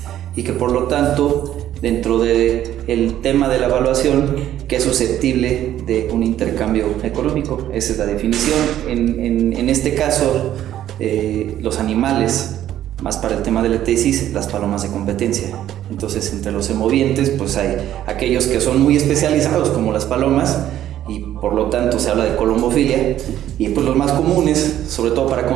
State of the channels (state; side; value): quieter; left; 12.0 dB